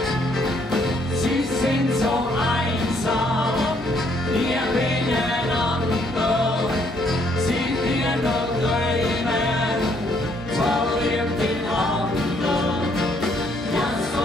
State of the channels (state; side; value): normal; both; correlation 0.68